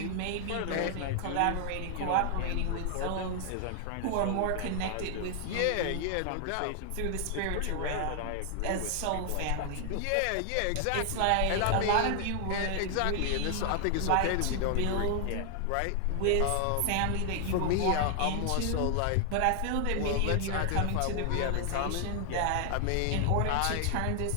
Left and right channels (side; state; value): both; different; correlation 0.00